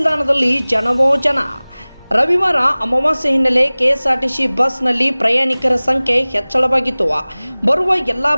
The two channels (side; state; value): both; inverted; correlation -1.00